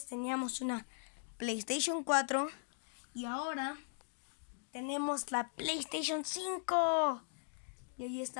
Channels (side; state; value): right; silent; digital silence